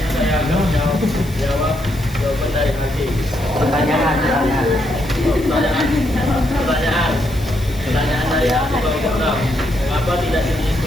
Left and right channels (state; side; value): noise; left; hiss, 20 dB below the sound